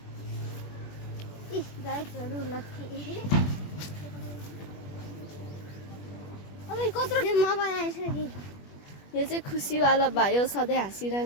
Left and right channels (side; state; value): right; late; 21 ms